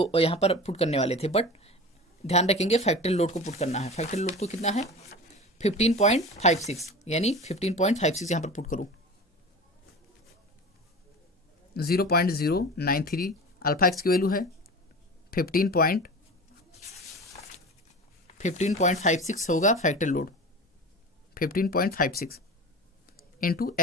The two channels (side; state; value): both; normal; correlation 0.33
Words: यहाँ पर पुट करने वाले थे, बट ध्यान रखेंगे फैक्टरी लोड को पुट करना है। फैक्टरी लोड तो कितना है 15.56 यानी 15.56 यहाँ पर पुट करूँ 0.093 अल्फा एक्स की वैल्यू है 15.56 होगा factor load 15.56 into